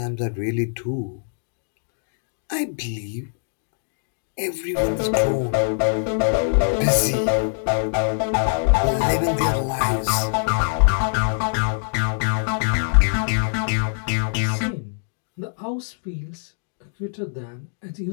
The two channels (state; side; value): silent; right; digital silence